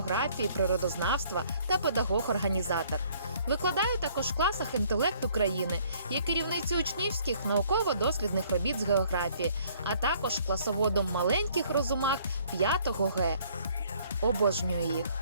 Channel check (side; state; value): both; inverted; correlation -0.60